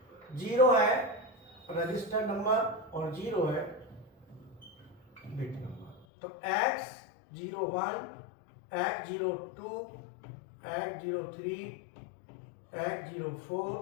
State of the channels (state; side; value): drops out; right; at 6.1 s